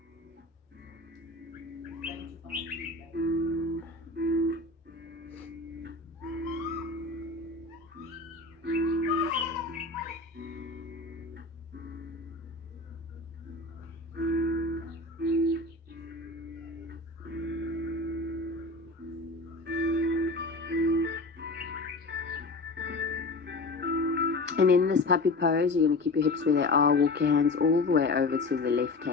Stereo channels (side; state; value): right; quieter; 3.2 dB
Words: And in this puppy pose, you're going to keep your hips where they are. Walk your hands all the way over to the